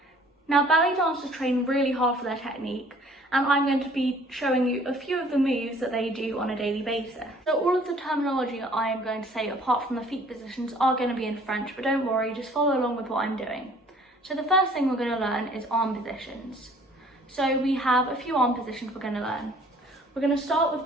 Now ballet dancers train really hard for their technique and I'm going to be showing you a few of the moves that they do on a daily basis. So all of the terminology I am going to say apart from the feet positions are going to be in French, but don't worry, just follow along with what I'm doing. So the first thing we're going to learn is arm positions. So we have a few arm positions we're going to learn. We're going to start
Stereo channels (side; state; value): both; normal; correlation 0.56